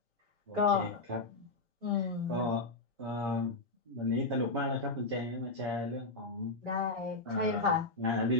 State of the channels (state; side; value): quieter; right; 3.1 dB